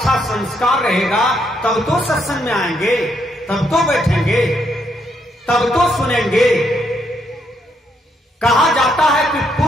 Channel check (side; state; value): both; normal; correlation 0.75